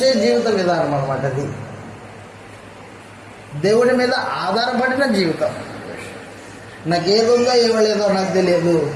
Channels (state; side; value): identical; both; correlation 1.00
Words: జీవిత విధానం అన్నమాట. అది దేవుడి మీద ఆధారపడిన జీవితం. నాకేదుందో ఇవ్వలేదో నాకు తెలియదు,